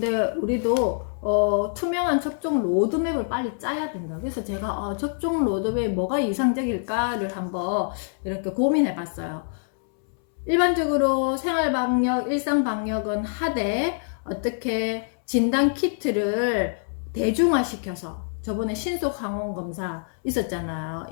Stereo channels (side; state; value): right; silent; 62 dB below the other